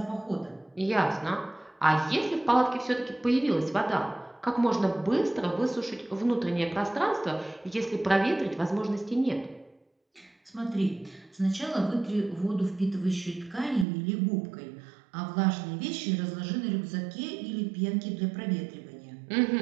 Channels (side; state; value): left; drops out; at 13.9 s